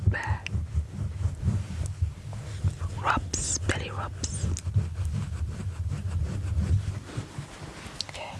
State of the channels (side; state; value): both; identical; correlation 1.00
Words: bear. Rubs, belly rubs. Okay.